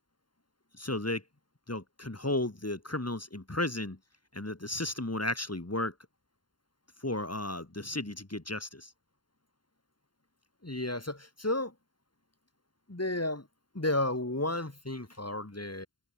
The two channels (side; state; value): right; late; 0.72 ms